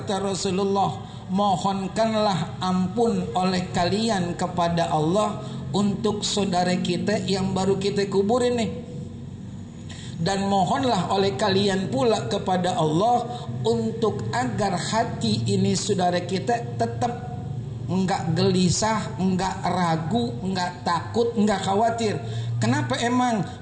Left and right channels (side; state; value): both; identical; correlation 1.00